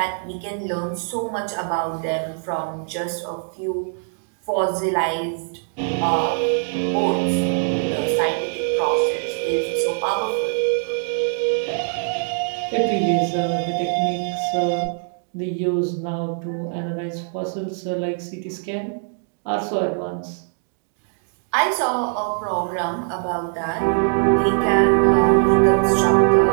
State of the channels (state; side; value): silent; left; digital silence